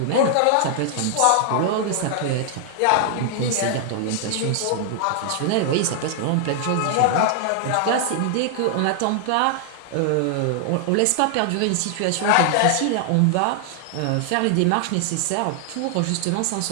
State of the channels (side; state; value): both; different; correlation 0.00